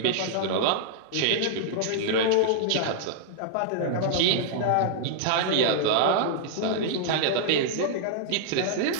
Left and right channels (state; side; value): different; both; correlation -0.02